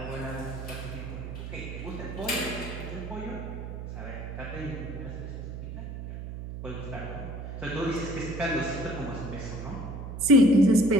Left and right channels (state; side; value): noise; right; hum, 8 dB below the sound